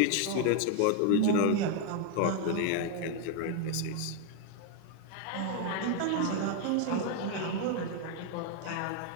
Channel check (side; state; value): both; different; correlation 0.01